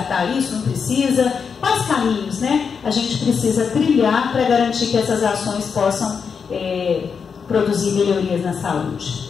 isso? Não precisa? Quais caminhos, né, a gente precisa trilhar para garantir que essas ações possam produzir melhorias na saúde?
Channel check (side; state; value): right; quieter; 6.1 dB